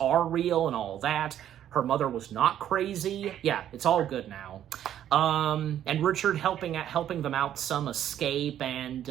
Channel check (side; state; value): left; quieter; 10.9 dB